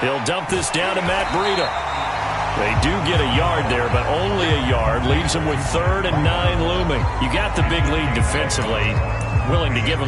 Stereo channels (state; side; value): identical; both; correlation 1.00